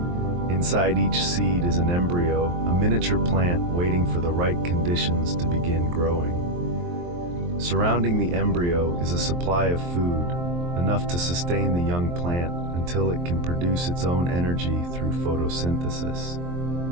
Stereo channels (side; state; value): left; late; 23 ms